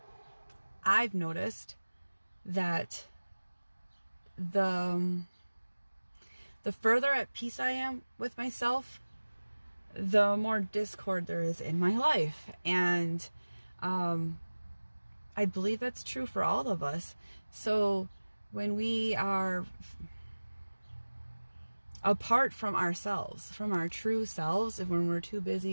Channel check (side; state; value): both; inverted; correlation -1.00